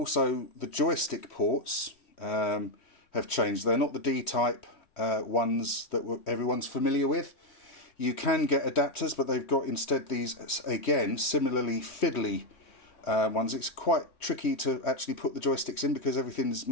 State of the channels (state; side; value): late; right; 3.1 ms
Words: the joystick ports have changed. They're not the D-type ones that everyone's familiar with. You can get adapters, but they've got instead these, again, similarly fiddly ones. It's quite tricky to actually put the joysticks in because everything's